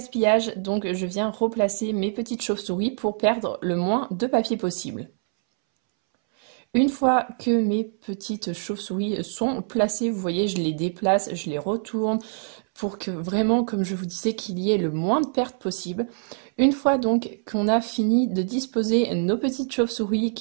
donc je viens replacer mes petites chauves-souris pour perdre le moins de papier possible. Une fois que mes petites chauves-souris sont placées, vous voyez, je les déplace, je les retourne pour que vraiment, comme je vous disais, qu'il y ait le moins de pertes possible. Une fois donc qu'on a fini de disposer nos petites chauves-souris,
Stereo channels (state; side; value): silent; left; 62 dB below the other